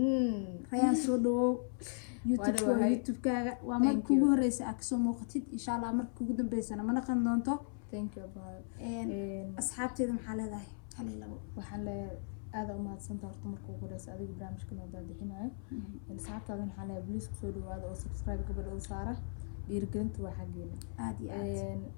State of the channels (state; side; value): silent; right; 53 dB below the other